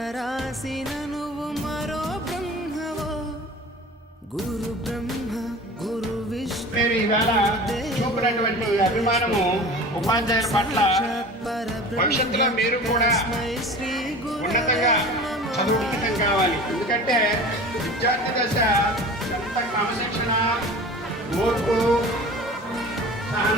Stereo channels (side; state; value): both; normal; correlation 0.38